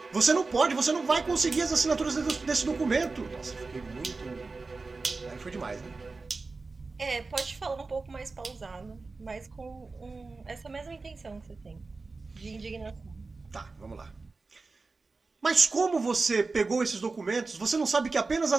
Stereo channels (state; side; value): quieter; left; 3.9 dB